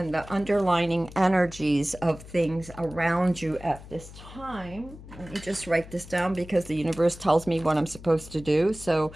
underlining energies of things around you at this time. Let me just write this down because the universe tells me what I'm supposed to do. So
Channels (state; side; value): noise; left; hum, 16 dB below the sound